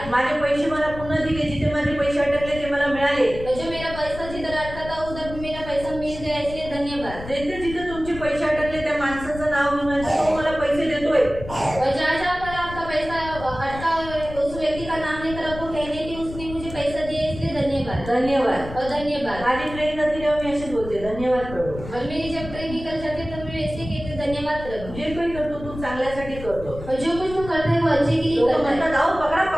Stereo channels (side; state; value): left; noise; rumble, 12 dB below the sound